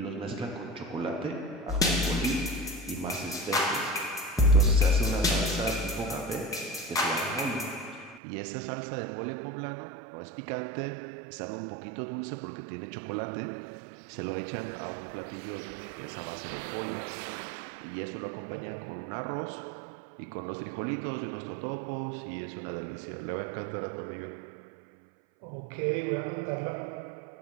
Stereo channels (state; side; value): drops out; left; at 8.2 s